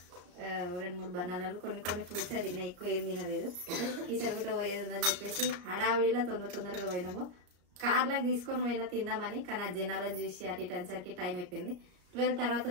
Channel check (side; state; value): left; late; 34 ms